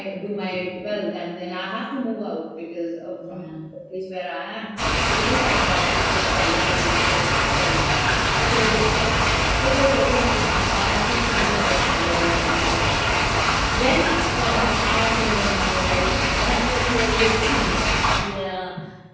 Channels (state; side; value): identical; both; correlation 1.00